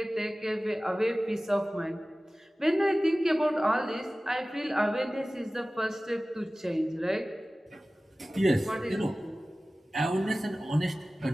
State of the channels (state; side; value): normal; both; correlation 0.97